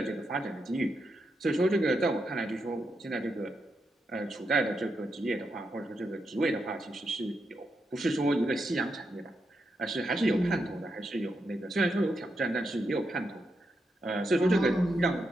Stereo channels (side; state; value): both; normal; correlation 0.84